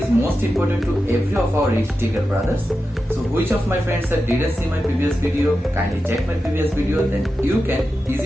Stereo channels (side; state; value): both; normal; correlation 0.91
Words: most important to every of our risk taker brothers. So which of my friends that didn't see my previous video, kindly check my previous video, then you can